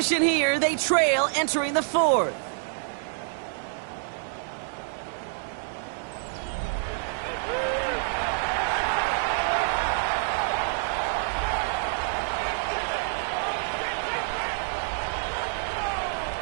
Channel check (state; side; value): silent; left; 60 dB below the other